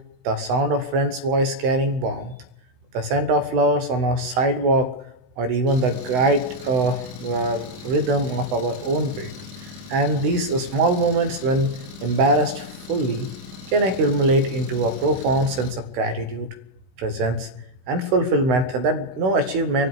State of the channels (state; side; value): late; left; 16 ms